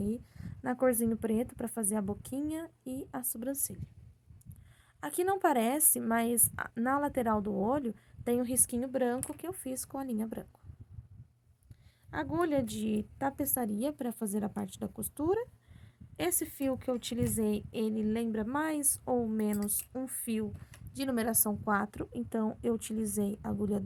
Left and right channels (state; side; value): identical; both; correlation 1.00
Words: na corzinho preto para fazer a boquinha e a sobrancelha. Aqui não parece, mas na lateral do olho tem um risquinho branco que eu fiz com a linha branca. Agulha de tapeçaria para fazer a parte da costura. Esse fio que eu utilizei, ele lembra mais ou menos um fio de numeração 4, então eu utilizei agulha